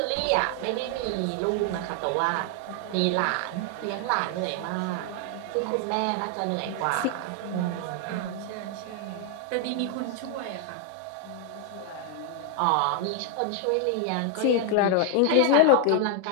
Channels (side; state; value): both; different; correlation 0.00